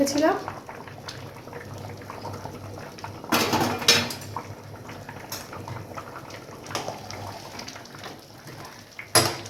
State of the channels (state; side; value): identical; both; correlation 1.00